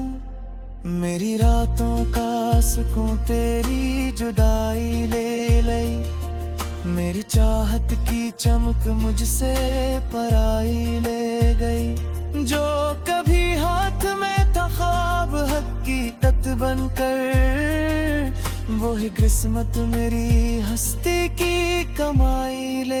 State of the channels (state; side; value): identical; both; correlation 1.00